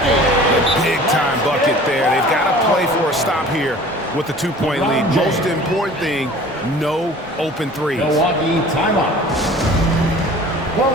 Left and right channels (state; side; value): normal; both; correlation 0.45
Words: Big time bucket there. They've got to play for a stop here with the 2-point lead. Most important thing, no open threes. Milwaukee timeout. The